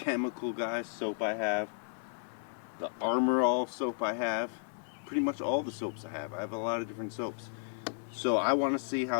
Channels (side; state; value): right; silent; digital silence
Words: Guys soap I have, the Armor All soap I have, pretty much all the soaps I have. I have a lot of different soaps. So I want to see